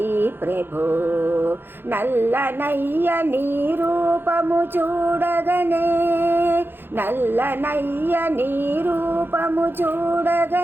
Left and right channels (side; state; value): left; late; 0.10 ms